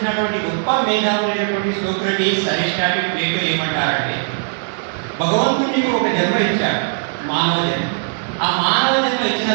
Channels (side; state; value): left; silent; 62 dB below the other